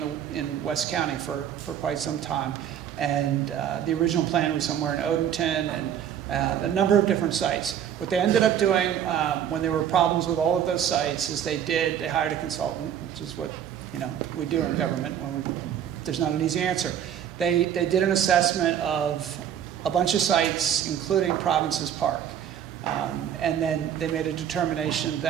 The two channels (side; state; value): left; quieter; 9.5 dB